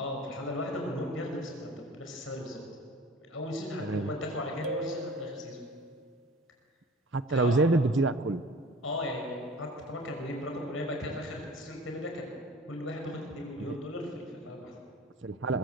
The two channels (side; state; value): both; normal; correlation 0.43